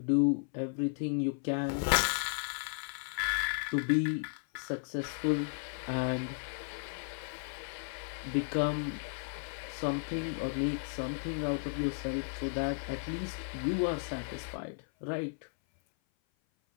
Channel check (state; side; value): silent; right; 55 dB below the other